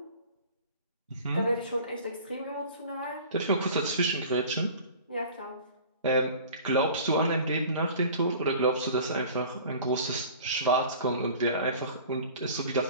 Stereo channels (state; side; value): inverted; both; correlation -0.43